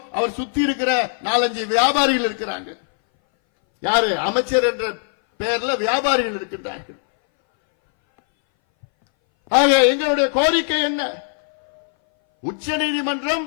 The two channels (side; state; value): right; silent; 61 dB below the other